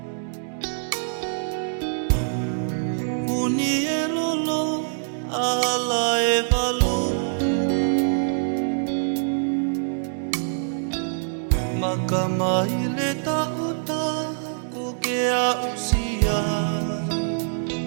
Uni e lolo ala e valu. Makamai le taota ko ke a usia.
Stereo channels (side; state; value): left; silent; digital silence